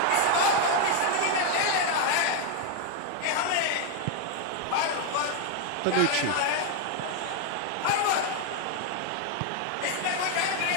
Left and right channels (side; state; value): both; different; correlation 0.01